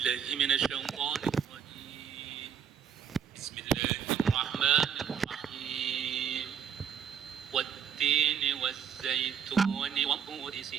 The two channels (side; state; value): left; quieter; 7.6 dB